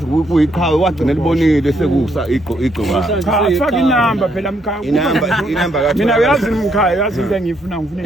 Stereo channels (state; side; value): normal; both; correlation 0.74